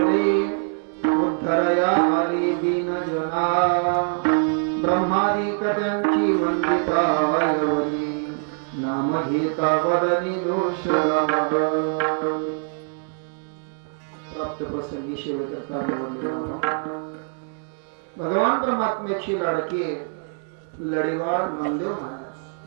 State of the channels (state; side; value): silent; left; 59 dB below the other